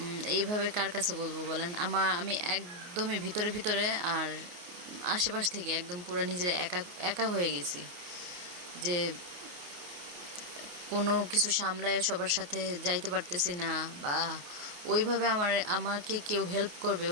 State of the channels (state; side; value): late; left; 28 ms